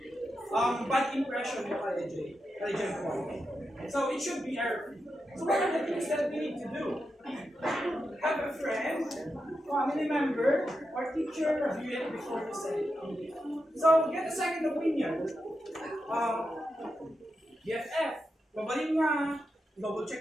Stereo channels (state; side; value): normal; both; correlation 0.87